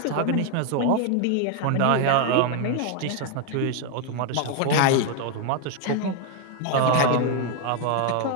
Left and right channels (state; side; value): different; both; correlation 0.01